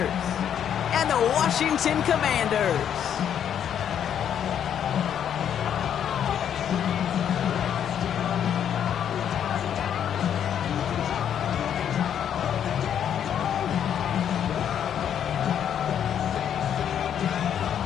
and the Washington Commanders.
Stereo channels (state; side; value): quieter; right; 9.1 dB